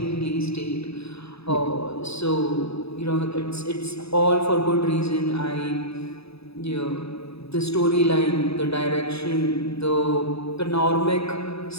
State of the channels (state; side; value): late; right; 0.78 ms